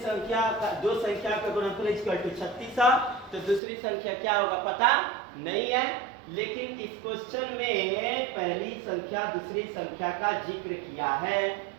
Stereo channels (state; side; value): drops out; left; at 3.6 s